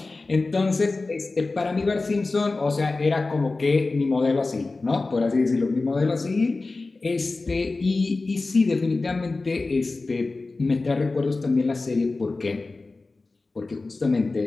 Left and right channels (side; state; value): right; quieter; 3.5 dB